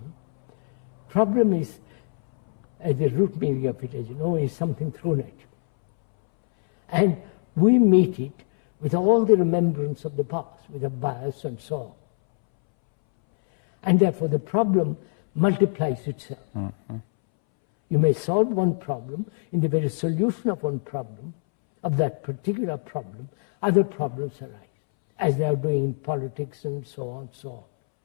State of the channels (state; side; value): silent; right; 62 dB below the other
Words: Problem is, at the root meaning of it, as you know, is something thrown at you. And we meet it with all the remembrance of the past, with a bias and so on. And therefore the problem multiplies itself. Mm-hmm. You may solve one problem, in the very solution of one problem, of that particular problem, other problems arise, as they are doing in politics and so on,